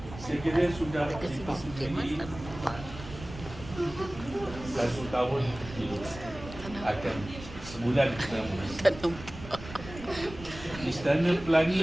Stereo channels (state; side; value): noise; right; rumble, 14 dB below the sound